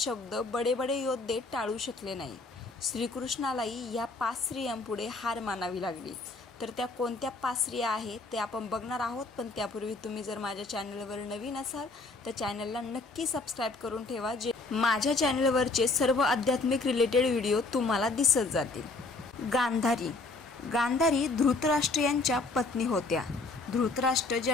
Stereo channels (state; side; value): quieter; right; 3.4 dB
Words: बडे बडे योद्धे टाळू शकले नाही. श्रीकृष्णालाही या 5 स्त्रियांपुढे हार मानावी लागली. तर त्या कोणत्या 5 स्त्रिया आहेत ते आपण बघणार आहोत. पण त्यापूर्वी तुम्ही जर माझ्या चॅनलवर नवीन असाल तर चॅनलला नक्की सबस्क्राईब करून ठेवा, जे माझ्या चॅनलवरचे सर्व आध्यात्मिक रिलेटेड व्हिडिओ तुम्हाला दिसत जातील. गांधारी धृतराष्ट्र यांच्या पत्नी होत्या. धृतराष्ट्र